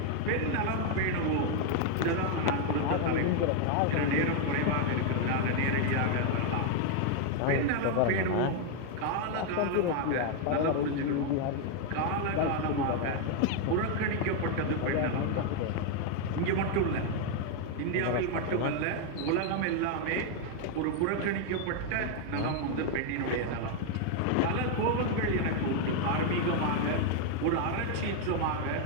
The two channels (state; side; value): different; both; correlation 0.01